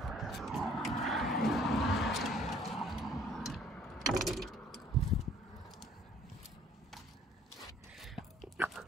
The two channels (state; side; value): normal; both; correlation 0.57